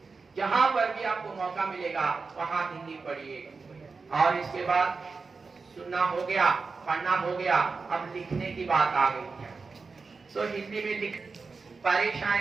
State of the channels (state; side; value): quieter; left; 4.5 dB